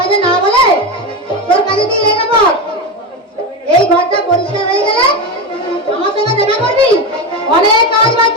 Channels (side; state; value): both; normal; correlation 0.18